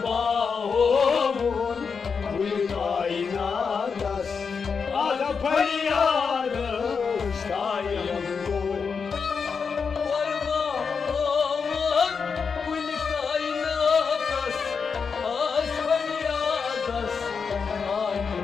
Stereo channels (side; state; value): right; quieter; 5.7 dB